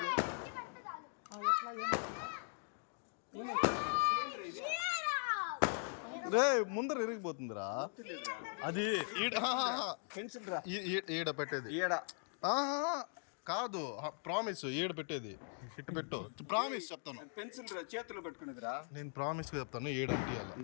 రే ముందర ఇరిగిపోతుందిరా అది ఈడ పెట్టేది కాదు ప్రామిస్ ఈడ పెట్టేది ఇటు పెట్టు ప్రామిస్ చెప్తాను పెన్సిల్ చేతిలో పట్టుకునేదిరా నేను ప్రామిస్ చెప్తాను ఏడు అంటియాలి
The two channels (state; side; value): silent; right; 51 dB below the other